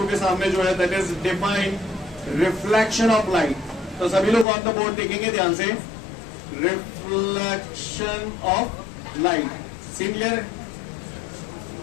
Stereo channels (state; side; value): drops out; right; at 4.5 s